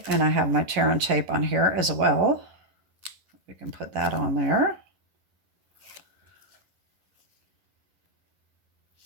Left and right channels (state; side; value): late; left; 11 ms